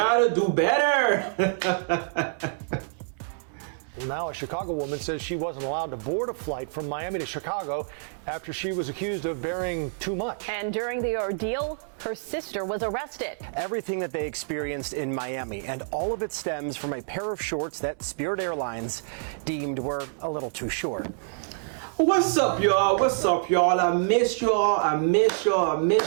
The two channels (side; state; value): left; silent; 60 dB below the other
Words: do better. Now a Chicago woman says she wasn't allowed to board a flight from Miami to Chicago after she was accused of bearing too much. And during the ordeal, her sister was arrested. Everything that they experienced in Miami, and all of it stems from a pair of shorts that Spirit Airlines deemed were a little too short. What's up, y'all? What's up, y'all? I miss